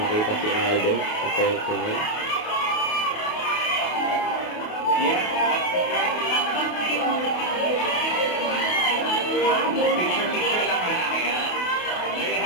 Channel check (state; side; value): late; right; 28 ms